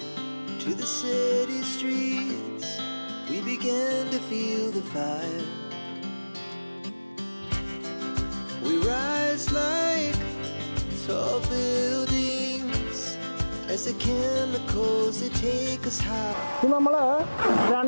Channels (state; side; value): inverted; both; correlation -1.00